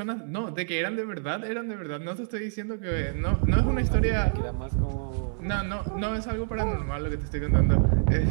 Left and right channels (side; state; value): left; silent; 60 dB below the other